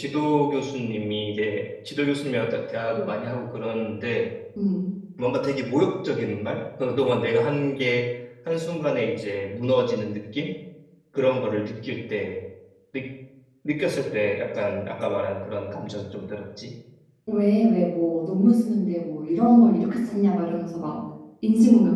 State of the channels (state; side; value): identical; both; correlation 1.00